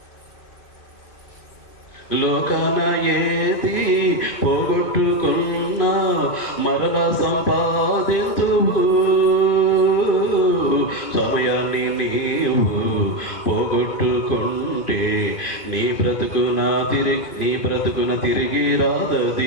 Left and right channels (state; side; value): late; right; 2.5 ms